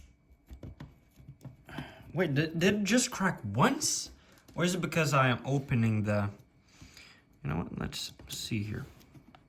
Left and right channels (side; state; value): both; identical; correlation 1.00